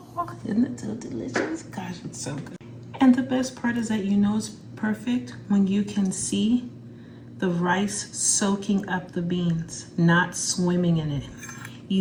Isn't it so delicious? Gosh, it's so good. And the best part is that you know it's perfect when you can see the rice soaking up the beans, not swimming in it.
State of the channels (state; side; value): identical; both; correlation 1.00